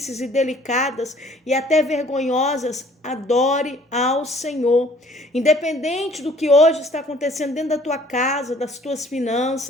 e delicadas e até vergonhosas, adore ao Senhor. Independente do que hoje está acontecendo dentro da tua casa, das tuas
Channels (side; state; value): both; normal; correlation 0.56